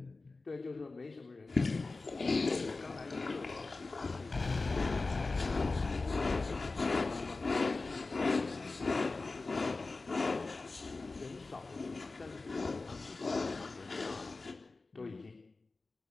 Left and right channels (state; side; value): quieter; right; 3.6 dB